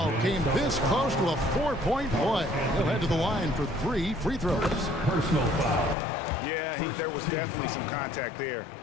came this close to a 4-point play. He'll head to the line for 3 free throws. Personal foul. Yeah, there was definitely some contact there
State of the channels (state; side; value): drops out; right; at 6.0 s